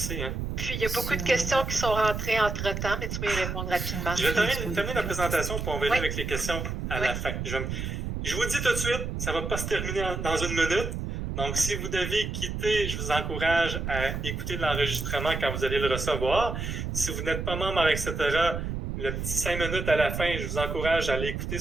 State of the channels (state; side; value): noise; right; rumble, 4 dB below the sound